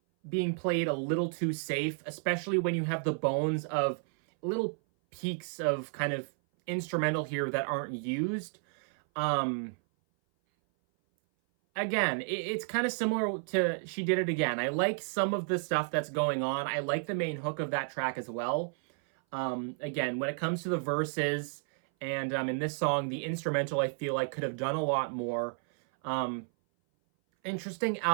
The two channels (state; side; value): silent; left; 57 dB below the other